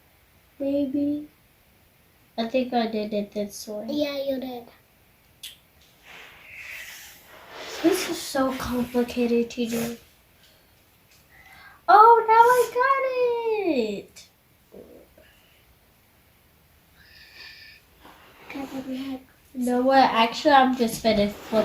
Maybe. I think I did it this way. Yeah, you did. This is so complicated to do. Oh, now I got it. You know what? Actually, I'm just gonna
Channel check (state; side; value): identical; both; correlation 1.00